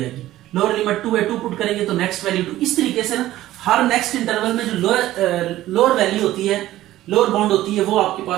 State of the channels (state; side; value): quieter; left; 14.8 dB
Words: आएगी। लोअर लिमिट 2 है, 2 पुट करेंगे तो नेक्स्ट वैल्यू 2। इस तरीके से ना हर नेक्स्ट इंटरवल में जो लोअर वैल्यू होती है, लोअर बाउंड होती है, वो आपके